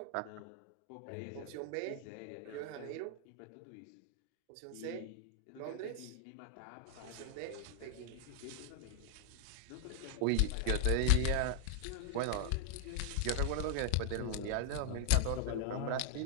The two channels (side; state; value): both; different; correlation -0.01